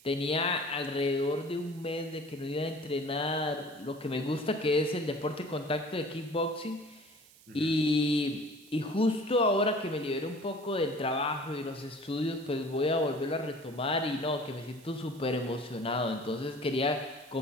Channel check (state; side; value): noise; right; hiss, 24 dB below the sound